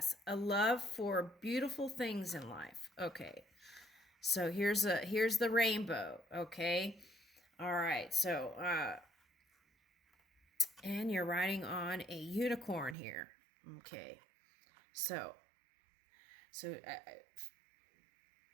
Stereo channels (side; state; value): left; drops out; at 13.0 s